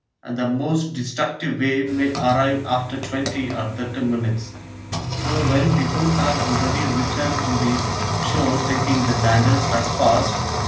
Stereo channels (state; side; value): identical; both; correlation 1.00